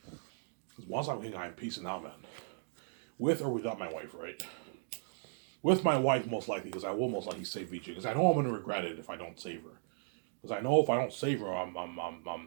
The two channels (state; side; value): silent; left; digital silence